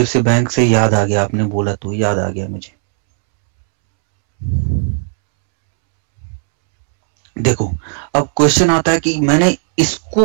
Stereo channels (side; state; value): left; silent; 70 dB below the other